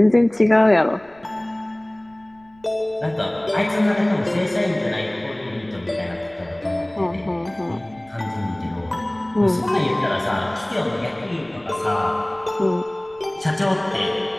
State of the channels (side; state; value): left; noise; rumble, 30 dB below the sound